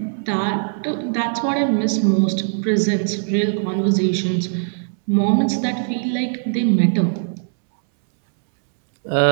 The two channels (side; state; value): left; silent; 66 dB below the other